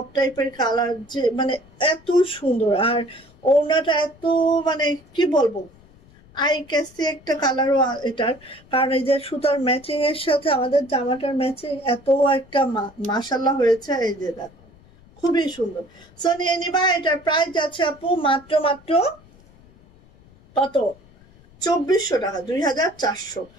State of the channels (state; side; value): noise; left; rumble, 27 dB below the sound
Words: টাইপের কালার, যে মানে এত সুন্দর। আর ওড়নাটা এত মানে কি বলবো, আই ক্যাসি একটা কালারও এটার, কারণ এই যে সুতার ম্যাচিং এর সাথে আমাদের জামাটার ম্যাচিং এত একটা মাশাআল্লাহ হয়েছে। এই যে দেখো খুবই সুন্দর। সো নিয়ে নিবা। এটার প্রাইস যাচ্ছে আপু মাত্র কত? 2400 টাকা, 2400।